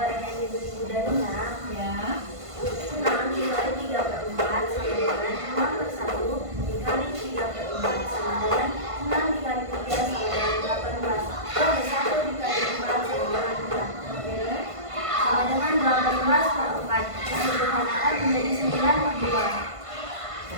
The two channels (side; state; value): left; late; 1.5 ms